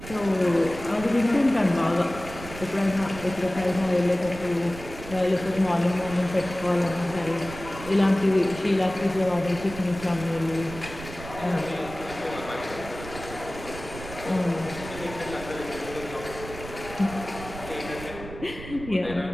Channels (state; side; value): noise; right; rumble, 13 dB below the sound